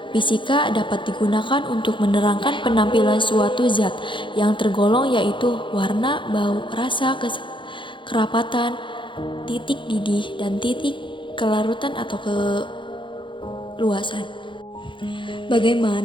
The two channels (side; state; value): right; late; 0.24 ms